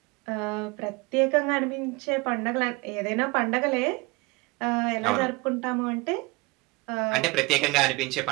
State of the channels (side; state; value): left; quieter; 24.8 dB